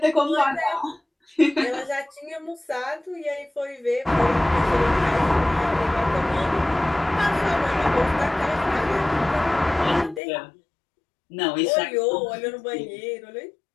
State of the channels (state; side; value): drops out; right; at 10.2 s